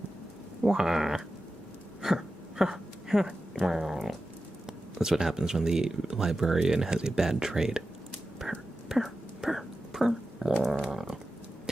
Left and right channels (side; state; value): both; normal; correlation 0.92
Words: That's what happens when the librarian has a bad trade.